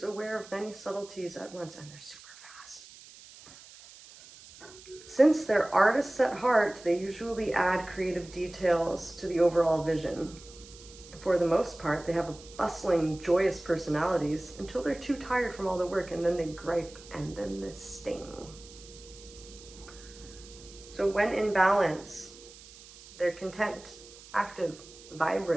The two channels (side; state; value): right; noise; hiss, 19 dB below the sound